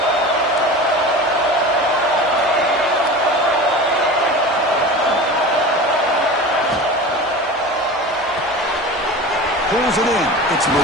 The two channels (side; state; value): both; normal; correlation 0.33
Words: Pulls it in. It's